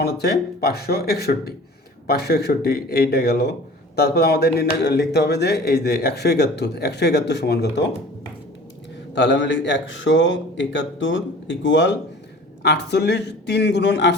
হচ্ছে 561। 561 এইটা গেল। তারপর আমাদের লিখতে হবে যে এই যে 171 সমান কত? তাহলে আমরা লিখি 171 ইকুয়াল 48, 3 গুণন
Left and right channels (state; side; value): normal; both; correlation 0.44